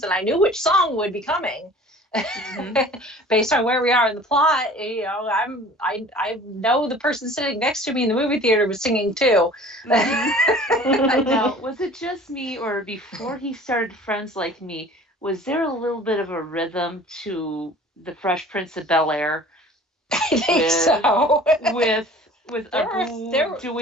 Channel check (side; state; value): both; normal; correlation 0.46